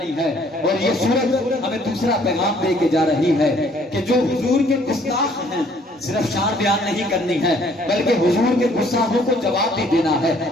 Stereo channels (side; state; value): both; normal; correlation 0.61